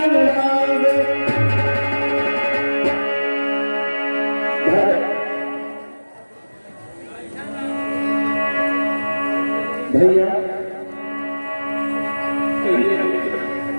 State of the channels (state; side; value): inverted; both; correlation -1.00